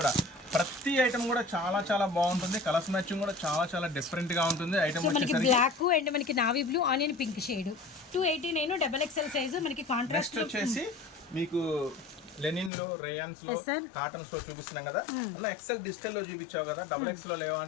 ప్రతి ఐటమ్ కూడా చాలా బాగుంటుంది. కలర్స్ మ్యాచింగ్ కూడా చాలా డిఫరెంట్ గా ఉంటుంది. ఐటమ్ వచ్చేసరికి బ్లాక్ అండ్ మనకి navy blue, onion pink shade, 289 double XL size మనకి కాంట్రాస్ట్. వచ్చేసి మీకు లెనిన్ లో, రేయాన్స్ లో, కాటన్స్ లో చూపిస్తున్నాం కదా. అలా ఎక్సెల్ డిజిటల్ లో చూపించావు కదా, డబుల్ ఎక్స్ లో లేవా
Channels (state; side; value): drops out; right; at 12.7 s